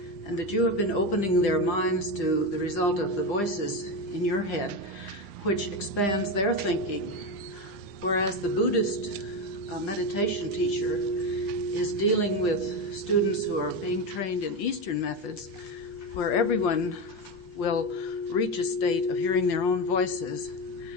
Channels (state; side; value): normal; both; correlation 0.15